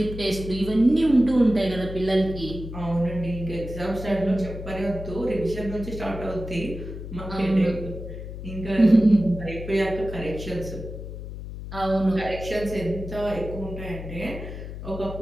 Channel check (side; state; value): left; noise; hum, 9 dB below the sound